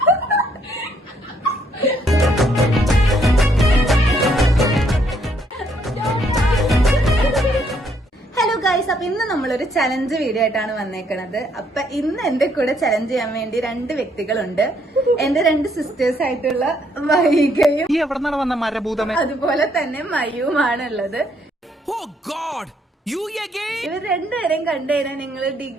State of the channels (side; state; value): both; normal; correlation 0.70